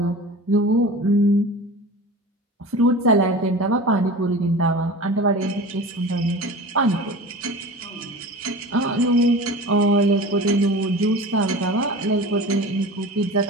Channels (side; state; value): both; normal; correlation 0.35